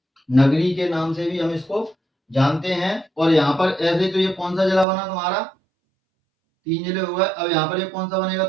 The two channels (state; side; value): drops out; left; at 4.9 s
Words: नगरी के नाम से भी हम इसको जानते हैं। और यहाँ पर ऐसे तो ये कौन सा जिला बना तुम्हारा? 3 जिले हो गए। अब यहाँ पर ये कौन सा बनेगा